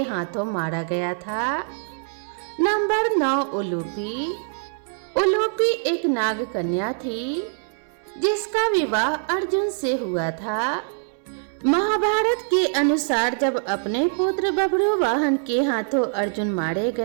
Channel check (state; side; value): silent; left; digital silence